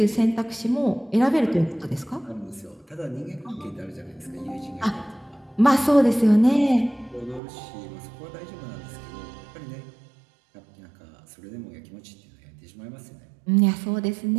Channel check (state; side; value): drops out; left; at 7.4 s